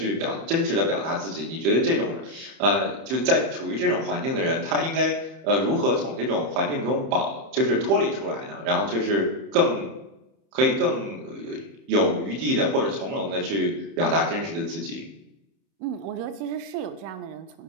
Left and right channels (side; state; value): left; late; 31 ms